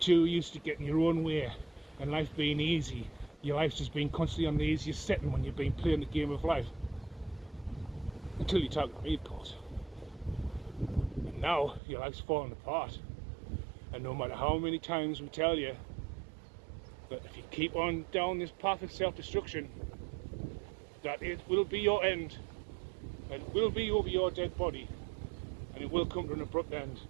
used to getting your own way and life being easy. Your life's just been constantly on the easiest setting when you've been playing the game of life. Until you talk to me, of course. And now your life's falling apart. And no matter how many times we tell you that if you keep on down this path of self-destruction, that it will be your end. And it will be over your dead body. And it will come to an abrupt end.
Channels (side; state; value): left; drops out; at 11.8 s